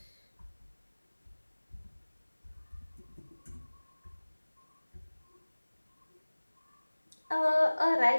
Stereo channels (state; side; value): inverted; both; correlation -1.00